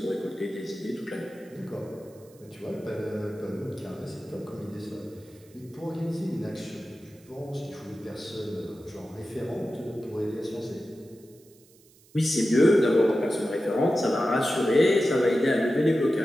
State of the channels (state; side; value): noise; right; hiss, 28 dB below the sound